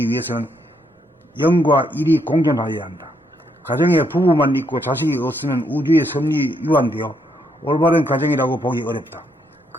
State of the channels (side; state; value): both; normal; correlation 0.75